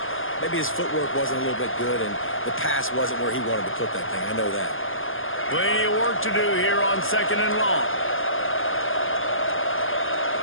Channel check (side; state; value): right; late; 0.59 ms